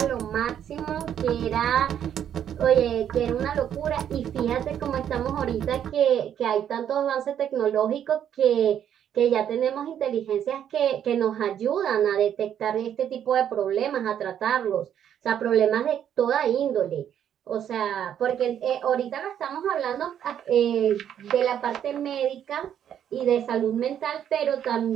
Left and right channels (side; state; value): left; quieter; 9.6 dB